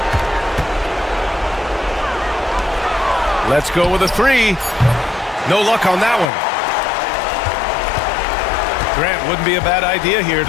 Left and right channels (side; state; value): right; drops out; at 6.2 s